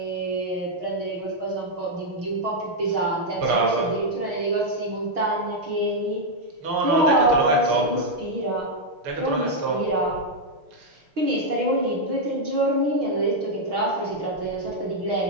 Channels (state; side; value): late; left; 6.2 ms